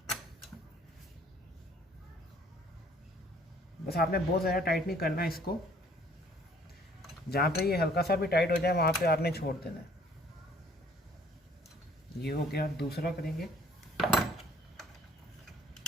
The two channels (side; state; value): both; normal; correlation 0.58